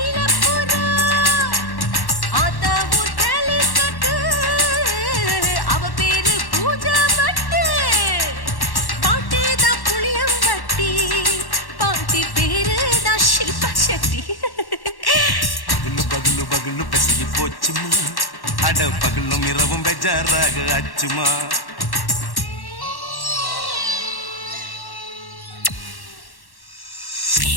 ஆத்தா ஊர் கேலிக்கட்டு அவ பேரு பூஜா பட்டு பாட்டி தான் புளியம்பட்டி பாட்டி பேரு தான் ஷில்பா செட்டி பகலு பகலு பகலு பசிக்கு போச்சுமா அட பகலும் இரவும் பெஜாராக ஆச்சுமா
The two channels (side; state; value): right; late; 1.1 ms